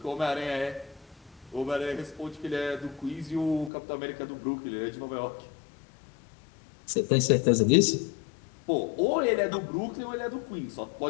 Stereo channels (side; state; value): right; drops out; at 3.7 s